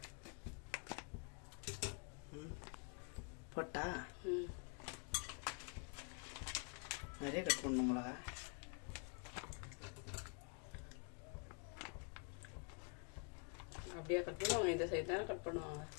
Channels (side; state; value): right; quieter; 37.9 dB